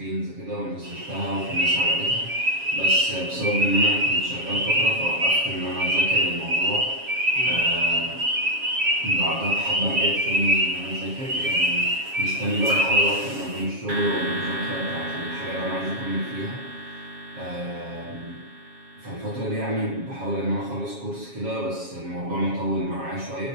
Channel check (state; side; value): late; left; 7.3 ms